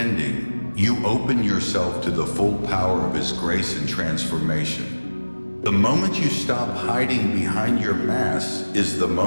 you open yourself to the full power of His grace and transformation. The moment you stop hiding behind your mask is the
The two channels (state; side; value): inverted; both; correlation -1.00